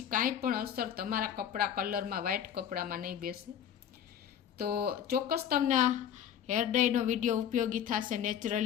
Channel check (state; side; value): quieter; right; 9.3 dB